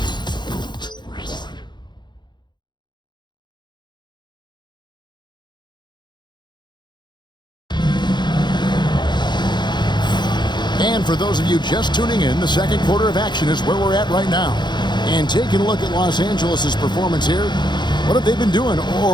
And for those of you just tuning in, the second quarter of action is where we're at right now. And taking a look at Los Angeles' performance here, what have they been doing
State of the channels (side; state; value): right; late; 0.21 ms